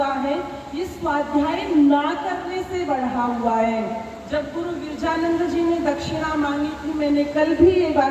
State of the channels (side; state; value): both; identical; correlation 1.00